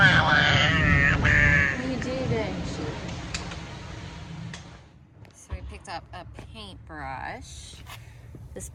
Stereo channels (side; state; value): both; identical; correlation 1.00